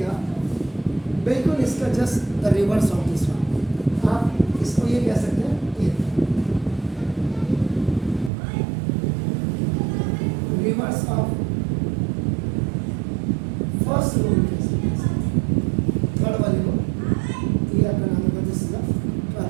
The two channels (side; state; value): left; drops out; at 8.3 s